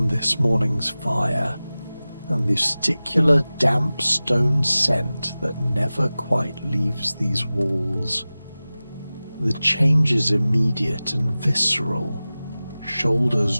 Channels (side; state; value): both; inverted; correlation -0.97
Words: this morning's fire, and the sticular damp stone scent that never quite leaves these walls. The change is immediate and visceral. Shoulders